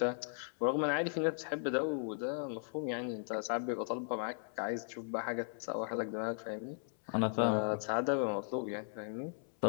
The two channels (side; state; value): right; silent; 53 dB below the other